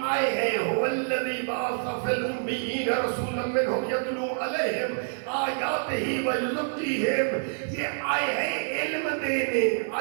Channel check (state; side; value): silent; left; digital silence